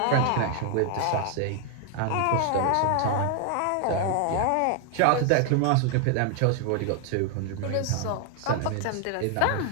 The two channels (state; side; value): different; both; correlation 0.00